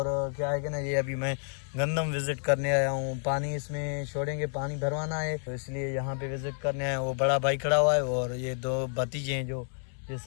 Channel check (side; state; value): right; silent; digital silence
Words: क्या है कि ना, ये अभी मैं गंदम विजिट करने आया हूँ। पानी इसमें छोड़ेंगे, पानी भरवाना है, तो इसलिए यहाँ पे विजिट करने आया हूँ। वो बड़ा भाई खड़ा हुआ है और ये दो भतीजे हैं जो ये